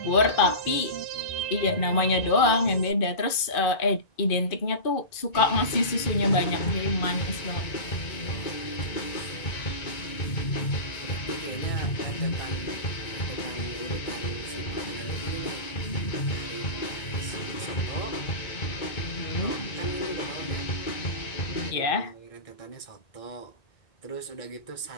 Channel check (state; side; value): late; right; 1.9 ms